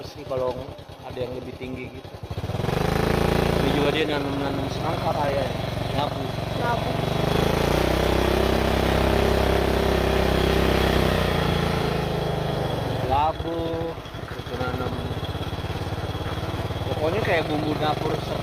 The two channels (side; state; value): both; identical; correlation 1.00